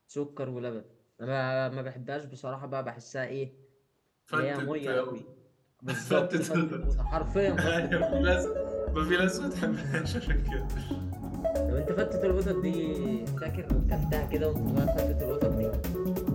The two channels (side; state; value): both; identical; correlation 1.00